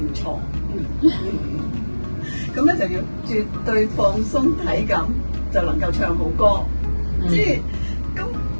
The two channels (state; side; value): inverted; both; correlation -1.00